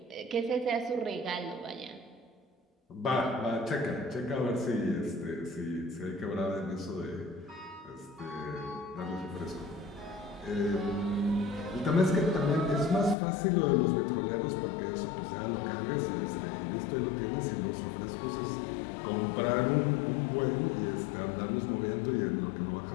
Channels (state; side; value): drops out; right; at 13.2 s